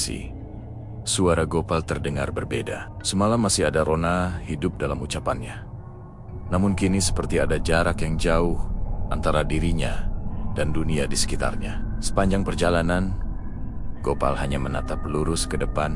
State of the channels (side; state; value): both; identical; correlation 1.00